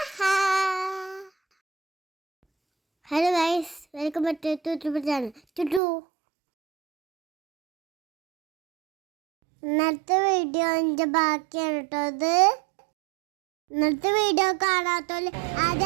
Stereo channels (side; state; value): left; drops out; at 5.8 s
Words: hello guys, welcome back to channel ചുട്ടു. ഇന്നത്തെ വീഡിയോ എൻ്റെ ബാക്കിയാണ് കേട്ടോ. ഇത് ഇന്നത്തെ വീഡിയോ കാണാത്തോല്